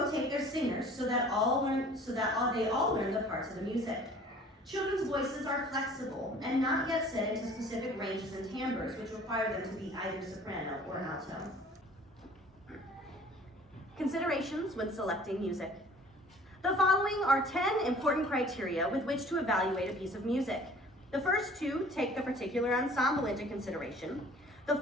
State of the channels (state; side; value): normal; both; correlation 0.50